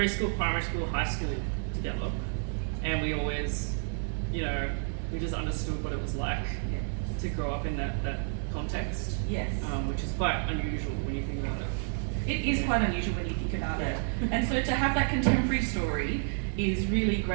primary school, high school together. And we always, you know, we just understood what it was like to grow up in that context. Yes. Which is quite unusual when you think about it. It is quite unusual when you think about it. And so to have that contemporary story is really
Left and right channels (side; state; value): left; silent; 58 dB below the other